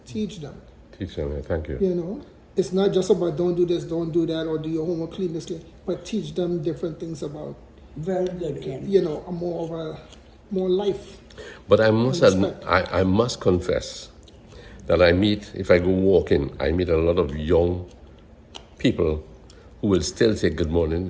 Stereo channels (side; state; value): both; identical; correlation 1.00